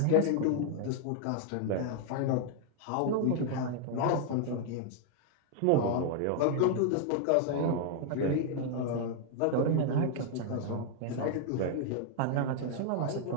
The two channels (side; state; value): both; different; correlation 0.00